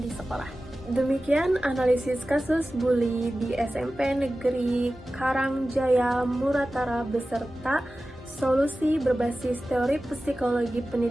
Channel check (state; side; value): normal; both; correlation 0.95